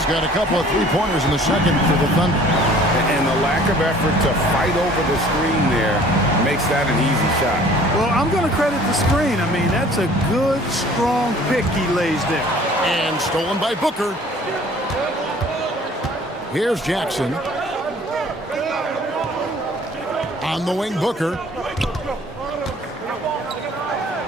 got a couple of three-pointers in the second for the Thunder. And the lack of effort to fight over the screen there makes that an easy shot. Well, I'm going to credit the screen. I mean, that's a good, strong pick he lays there. And stolen by Booker. Here's Jackson. On the wing, Booker.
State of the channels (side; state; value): both; normal; correlation 0.52